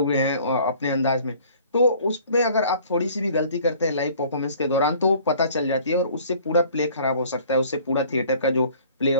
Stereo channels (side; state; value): both; inverted; correlation -0.52